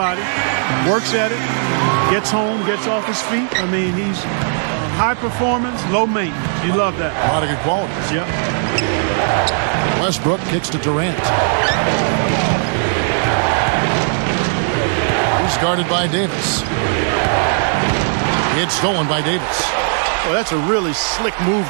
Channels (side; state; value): left; silent; 67 dB below the other